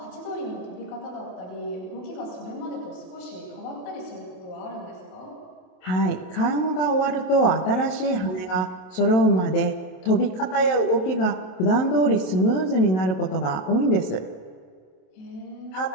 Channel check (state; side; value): late; right; 27 ms